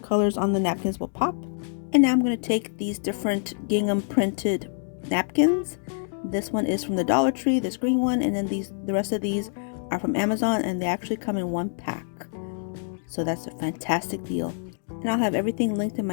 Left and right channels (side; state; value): right; silent; digital silence